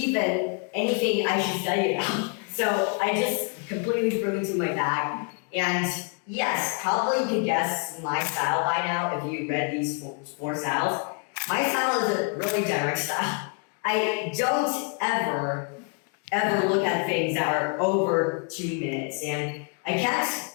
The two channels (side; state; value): right; quieter; 38.0 dB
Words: anything I should study about. So I just completely threw into my bag. And yes, probably you could guess my style by now if you read these four styles. My style is a really direct style. I don't ever look at things that are over 2 minutes, and I can't